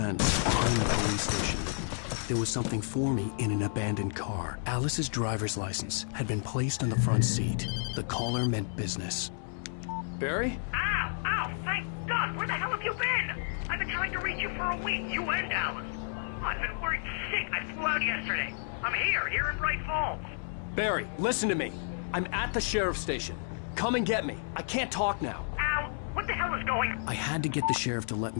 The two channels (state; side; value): silent; right; 57 dB below the other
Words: behind the police station. There was something for me in an abandoned car. Alice's driver's license had been placed on the front seat. The caller meant business. Barry? Ow! Ow! Thank God! Where the hell have you been? I've been trying to reach you for a week, you and Alice. Oh, I've been worried sick. I flew out yesterday. I'm here in Bright Falls. Barry, listen to me. I'm at the sheriff's station. Come and get me. I can't talk now. Ow! What the hell is going on? I had to get the sheriff to let